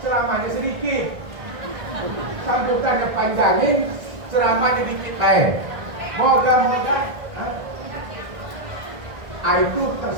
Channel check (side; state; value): left; late; 1.5 ms